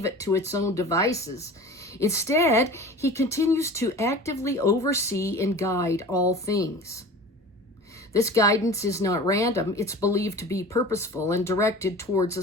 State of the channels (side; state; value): both; normal; correlation 0.38